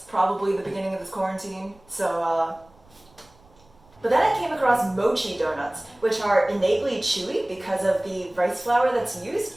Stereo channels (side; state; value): right; noise; rumble, 29 dB below the sound